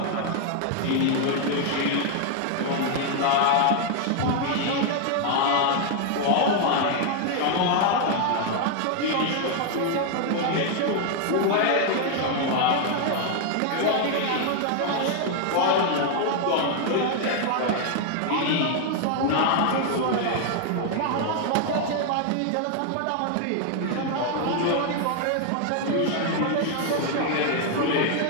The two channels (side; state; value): both; different; correlation 0.00